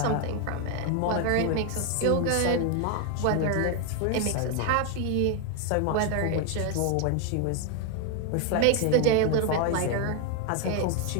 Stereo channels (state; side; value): different; both; correlation 0.01